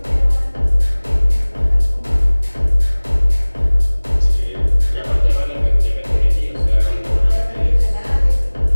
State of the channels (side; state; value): both; inverted; correlation -1.00